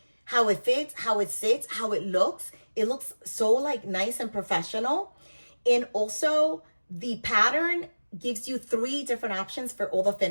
how it fits, how it sits, how it looks. It looks so like nice and professional. And also the pattern gives you 3 different options for all the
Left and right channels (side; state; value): both; inverted; correlation -1.00